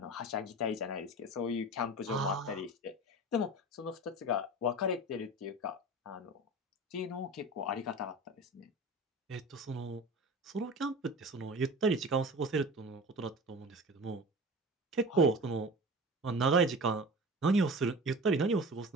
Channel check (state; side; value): normal; both; correlation 0.35